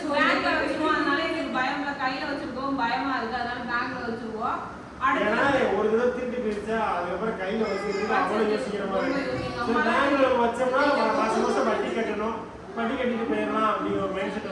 அதனால எங்களுக்கு பயம்ல, கையில வச்சிருக்கோம் பயமா இருக்கு, அதனால பேங்க்ல வச்சிருவோம். ஒரு தடவை திருட்டு போயிடுச்சா அதுக்கப்புறம் கையில வச்சிருக்கு அவ்வளவு யோசிக்கிற மாதிரி. பேங்க்ல வச்சோம்னா மாசம் மாசம் வட்டி கட்டணும், வட்டி கட்டிட்டு போயிடலாம் அப்படிங்கிற ஒரு மைண்ட் செட்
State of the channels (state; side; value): identical; both; correlation 1.00